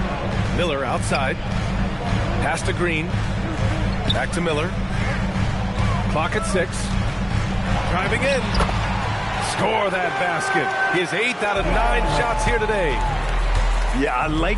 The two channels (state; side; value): identical; both; correlation 1.00